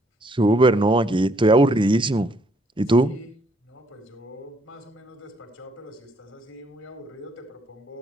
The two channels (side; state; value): both; normal; correlation 0.68